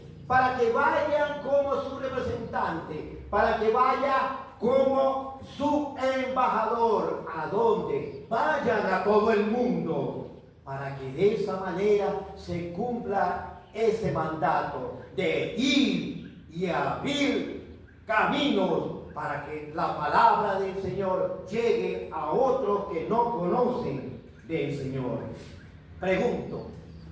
Para que vayan como su representante, para que vaya como su embajador. ¿A dónde? Vayan a todo el mundo, para que de esa manera se cumpla ese mandato de ir y abrir caminos para que la palabra del Señor llegue a otros que no conocen del Señor. Pregunto,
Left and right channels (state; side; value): identical; both; correlation 1.00